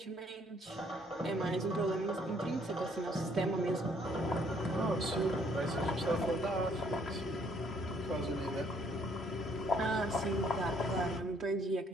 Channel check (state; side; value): normal; both; correlation 0.65